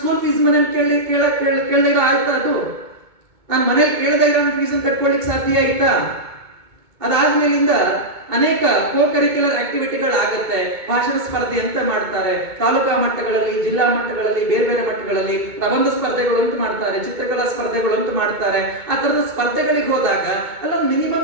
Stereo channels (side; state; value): left; late; 2.2 ms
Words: ಫೀಸ್ ಮನೇಲಿ ಕೇಳಿರೋ ಆಯ್ತಾ? ಅದು ನಾನು ಮನೇಲಿ ಕೇಳದೇ ಇರೋ ಫೀಸ್ ಕಟ್ಕೊಳ್ಳಿಕ್ಕೆ ಸಾಧ್ಯ ಆಯ್ತಾ? ಅದಾದ್ಮೇಲಿಂದ ಅನೇಕ ಕೋ-ಕರಿಕ್ಯುಲರ್ ಆಕ್ಟಿವಿಟಿಗಳು ಆಗುತ್ತೆ. ಭಾಷಣ ಸ್ಪರ್ಧೆ ಅಂತ ಮಾಡ್ತಾರೆ, ತಾಲೂಕಾ ಮಟ್ಟಗಳಲ್ಲಿ, ಜಿಲ್ಲಾ ಮಟ್ಟಗಳಲ್ಲಿ, ಬೇರೆ ಮಟ್ಟಗಳಲ್ಲಿ ಪ್ರಬಂಧ ಸ್ಪರ್ಧೆಗಳು ಅಂತ ಮಾಡ್ತಾರೆ, ಚಿತ್ರಕಲಾ ಸ್ಪರ್ಧೆಗಳು ಅಂತ ಮಾಡ್ತಾರೆ. ಆ ತರದ ಸ್ಪರ್ಧೆಗಳಿಗೆ ಹೋದಾಗ ಅಲ್ಲೊಂದು